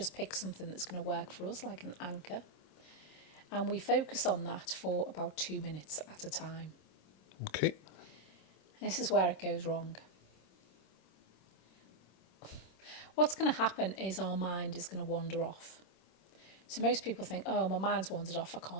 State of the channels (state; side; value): late; right; 26 ms